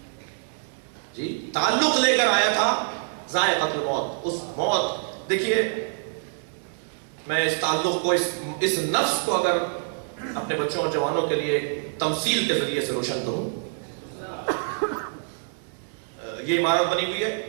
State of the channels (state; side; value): silent; left; 61 dB below the other